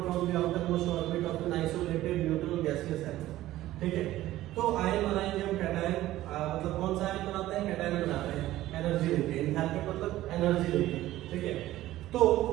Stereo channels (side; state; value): left; quieter; 15.2 dB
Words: from the outermost orbit of an isolated neutral gaseous atom. ठीक है, तो आयन बनाएंगे हम कैटायन, मतलब कौन सा आयन बनाते हैं, कैटायन बनाते हैं एनर्जी देके, एंथैल्पी मतलब एनर्जी देके। ठीक है, तो